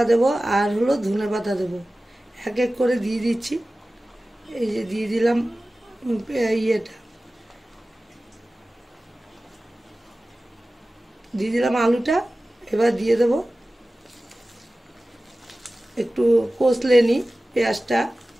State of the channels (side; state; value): both; normal; correlation 0.96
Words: দেব, আর হলো ধনেপাতা দেবো। এক এক করে দিয়ে দিচ্ছি। এই যে দিয়ে দিলাম আলুটা। এবার দিয়ে দেবো একটু কষলে নিই পেঁয়াজটা।